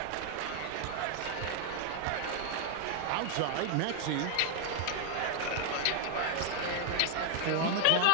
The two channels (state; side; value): different; both; correlation 0.00